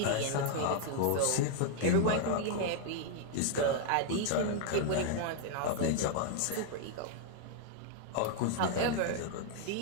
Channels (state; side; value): different; both; correlation 0.00